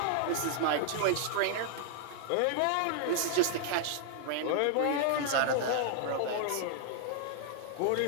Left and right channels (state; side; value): different; both; correlation -0.01